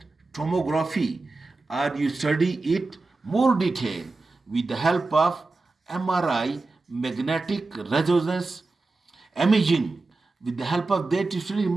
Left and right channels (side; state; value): left; quieter; 3.5 dB